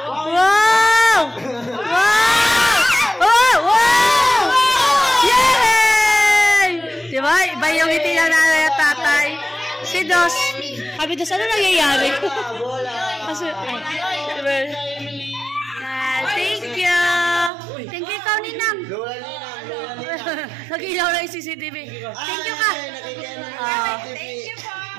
Wow! Yay! Diba? Iba yung ngiti ng nanay at tatay. Si Dos. Sabi Dos, ano nangyayari? Kasi, thank you. Thank you, ikaw, Ninang. Nag-ilaw na yung CCTV. Thank you ka. Thank you po.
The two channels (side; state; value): left; drops out; at 17.5 s